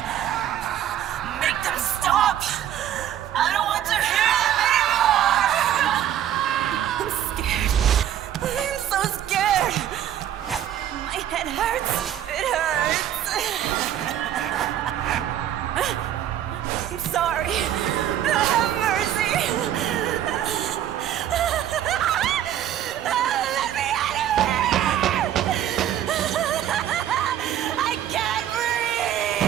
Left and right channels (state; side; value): quieter; left; 11.0 dB